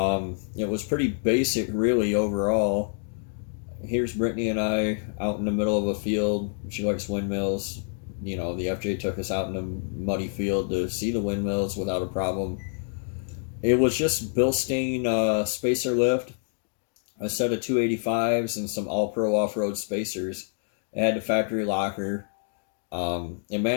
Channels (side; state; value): right; silent; digital silence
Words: was pretty basic, really, overall. Here's Brittany and I out in the middle of a field. She likes windmills. The FJ took us out in a muddy field to see the windmills without a problem. It was just Bilstein spacer lift, a set of 285s, and some All Pro off road spacers. It had the factory locker. It